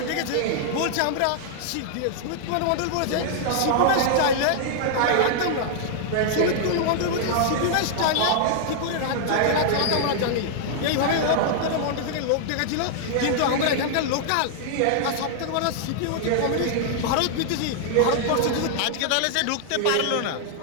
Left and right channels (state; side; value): different; both; correlation -0.01